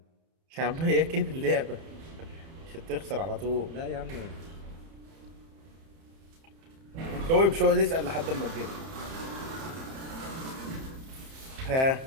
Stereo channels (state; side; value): late; left; 30 ms